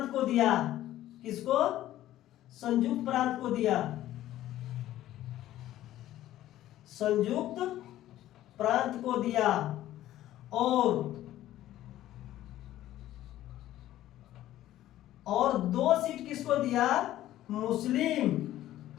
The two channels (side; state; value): right; quieter; 13.8 dB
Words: को दिया। किसको? संयुक्त प्रांत को दिया। संयुक्त प्रांत को दिया। और 2 सीट किसको दिया? मुस्लिम